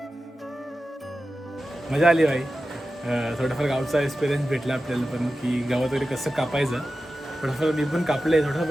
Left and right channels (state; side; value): normal; both; correlation 0.93